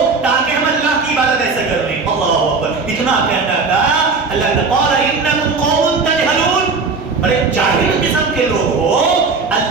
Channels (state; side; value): quieter; left; 4.4 dB